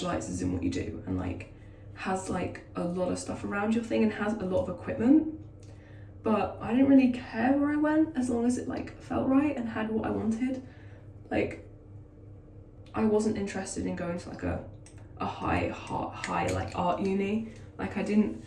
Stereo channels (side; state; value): both; identical; correlation 1.00